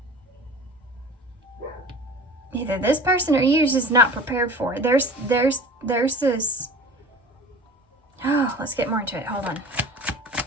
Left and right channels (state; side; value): normal; both; correlation 0.41